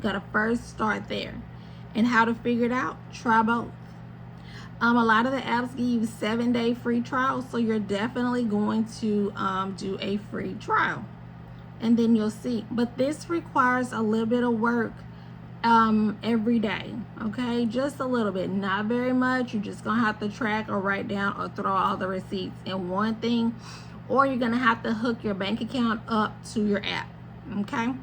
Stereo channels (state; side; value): identical; both; correlation 1.00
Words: got to first start there. And how to figure it out? Try both. A lot of the apps give you 7-day free trials, so you're definitely going to do a free trial, and then you'll see. But this requires a little bit of work every day, okay? Just a little bit, not very much. You're just gonna have to track or write down or throw all the receipts in one thing, or you're gonna have to hook your bank account up to your app, okay?